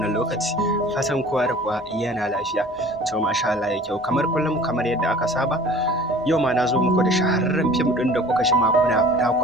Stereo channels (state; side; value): normal; both; correlation 0.46